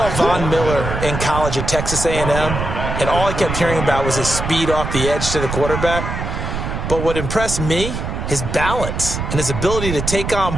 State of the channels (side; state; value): right; noise; rumble, 4 dB below the sound